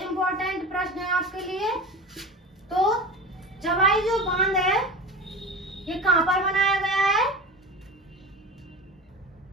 इंपॉर्टेंट प्रश्न है आपके लिए। तो जवाई जो बांध है ये कहाँ पर बनाया गया है?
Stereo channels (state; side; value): normal; both; correlation 0.31